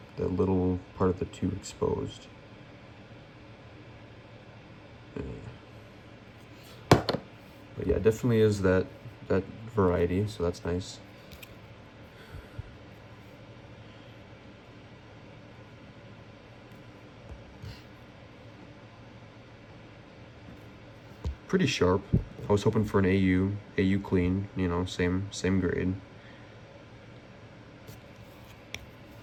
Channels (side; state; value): both; identical; correlation 1.00